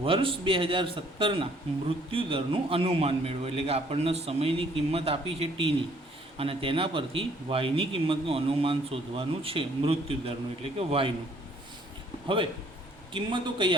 વર્ષ 2017ના મૃત્યુદરનું અનુમાન મેળવો. એટલે કે આપણને સમયની કિંમત આપી છે ટીની અને તેના પરથી વાયની કિંમતનું અનુમાન શોધવાનું છે મૃત્યુદરનું એટલે કે વાયનું. હવે કિંમતો કઈ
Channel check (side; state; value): both; normal; correlation 0.62